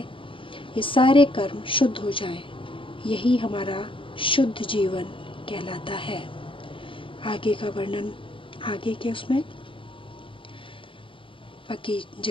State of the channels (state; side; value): late; right; 0.25 ms